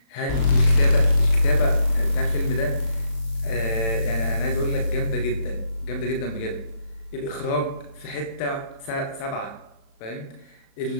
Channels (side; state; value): right; late; 35 ms